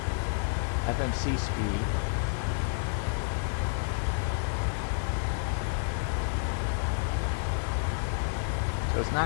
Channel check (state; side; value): silent; right; 56 dB below the other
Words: FMC speed. So it's